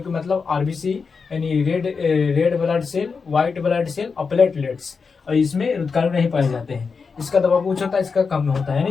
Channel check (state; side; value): quieter; right; 5.1 dB